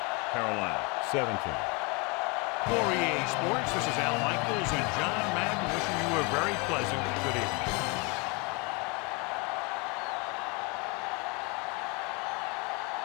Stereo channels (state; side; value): quieter; right; 30.2 dB